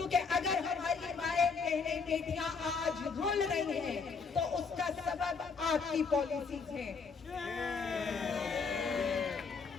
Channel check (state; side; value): quieter; right; 5.1 dB